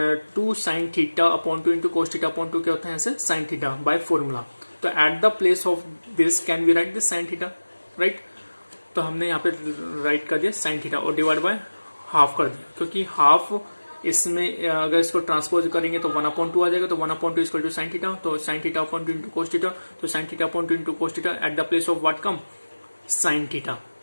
2 साइन θ/2 इंटू कोस θ/2 क्या होता है? ऐसे साइन थीटा बाय फॉर्मूला. तो at the place of this can we write this sine theta, right? तो हमने यहाँ पे राइट कर दिया साइन थीटा और डिवाइड बाय हाफ कर दिया, क्योंकि हाफ इसमें अगर इसको ट्रांसपोज करेंगे तो 1/2 आ जाएगा. तो 1/2 इक्वल टू साइन थीटा. तो साइन θ/2 इंटू कोस थीटा. तो sine θ/2 into cos theta at the place of what come? Sine theta.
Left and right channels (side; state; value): both; inverted; correlation -1.00